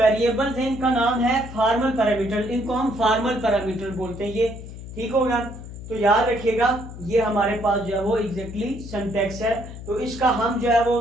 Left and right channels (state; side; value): noise; left; hum, 12 dB below the sound